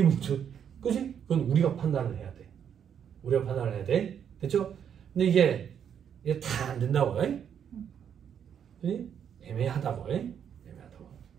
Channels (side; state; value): left; quieter; 8.4 dB